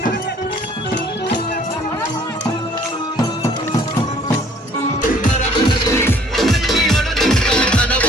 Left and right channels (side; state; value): both; normal; correlation 0.57